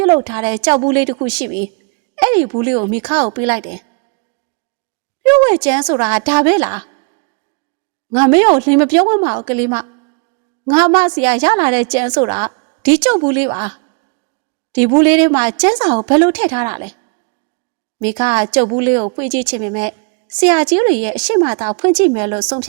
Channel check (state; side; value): quieter; left; 34.0 dB